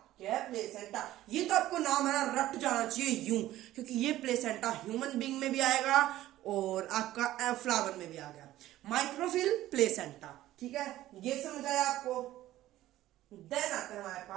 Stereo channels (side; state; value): left; quieter; 14.7 dB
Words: क्या है? प्लेसेंटा। ये तो आपको नाम है ना रट जाना चाहिए यूं, क्योंकि ये प्लेसेंटा ह्यूमन बीइंग में भी आएगा और आपका फ्लावर में भी आ गया। माइक्रोफिल, प्लेसेंटा, ठीक है, ये समझ आया आपको। देन आता है हमारे